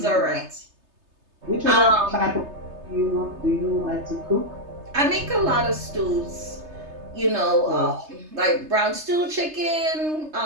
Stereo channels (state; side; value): late; left; 3.3 ms